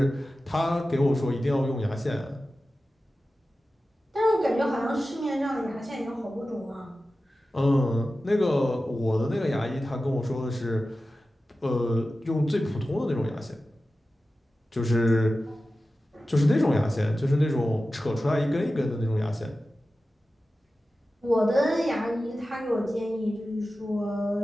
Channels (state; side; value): normal; both; correlation 0.94